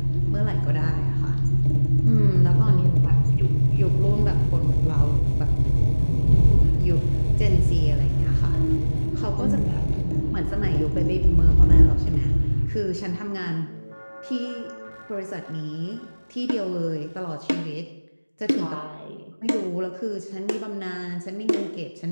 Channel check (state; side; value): inverted; both; correlation -1.00